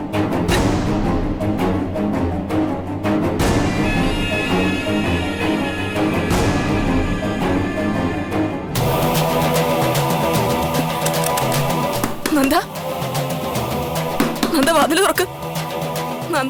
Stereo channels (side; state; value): both; identical; correlation 1.00